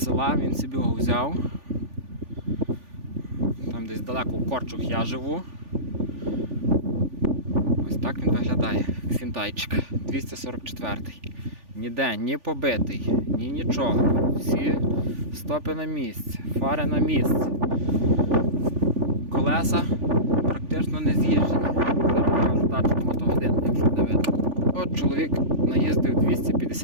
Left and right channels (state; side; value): late; left; 3.4 ms